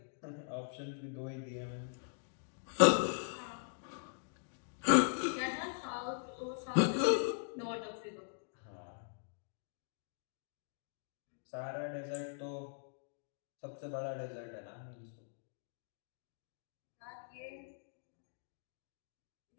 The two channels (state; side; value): silent; right; digital silence